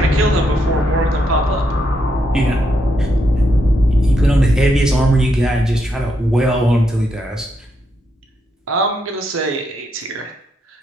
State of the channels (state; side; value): normal; both; correlation 0.79